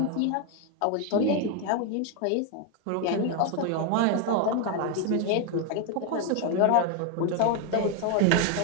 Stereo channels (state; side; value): different; both; correlation 0.01